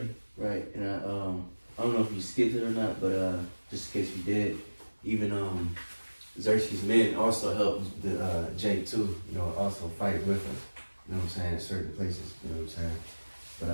Right, and I don't know if you skipped it or not, but just in case you did, even Xerxes' men also helped the Jake too, you know, also fight with us. You know what I'm saying? In certain places, you know what I'm saying?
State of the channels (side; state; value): both; inverted; correlation -1.00